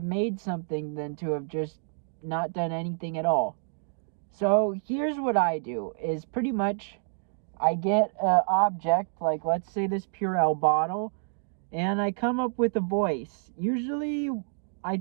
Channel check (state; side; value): silent; left; digital silence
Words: made something than to have just not done anything at all. So here's what I do, is pretty much I get an object, like let's say this Purell bottle, and I come up with a voice. Usually I